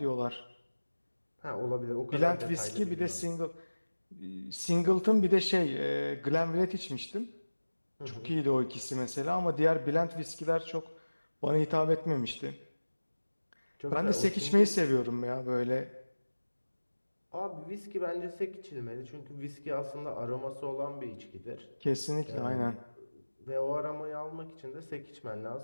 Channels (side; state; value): both; inverted; correlation -1.00